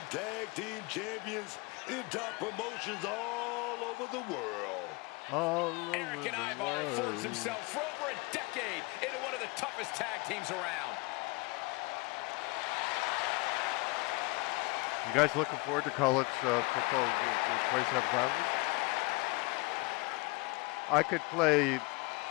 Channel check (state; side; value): quieter; right; 26.8 dB